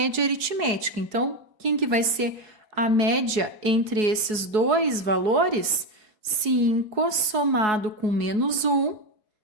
aritmética. Então, quem que vai ser a média entre esses dois valores? 5 somado com menos 1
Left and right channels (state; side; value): late; left; 4.7 ms